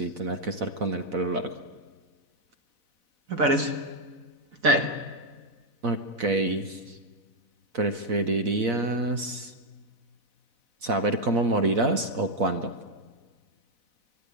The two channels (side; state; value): left; late; 4.0 ms